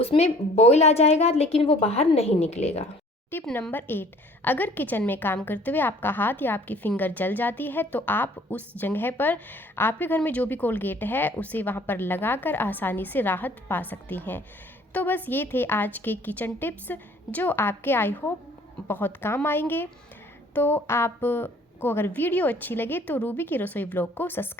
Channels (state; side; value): normal; both; correlation 0.54